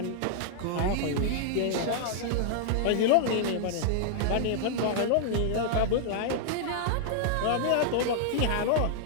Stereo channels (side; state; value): both; different; correlation -0.01